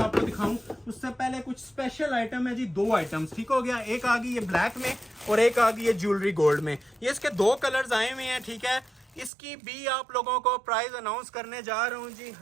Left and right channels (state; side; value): drops out; left; at 9.3 s